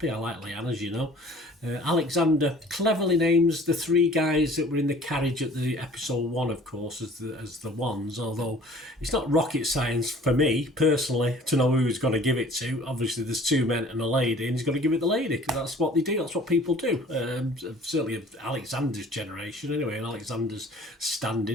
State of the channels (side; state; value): both; normal; correlation 0.50